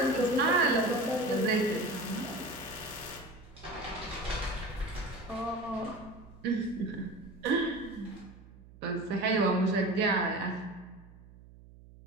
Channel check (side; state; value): right; noise; hum, 21 dB below the sound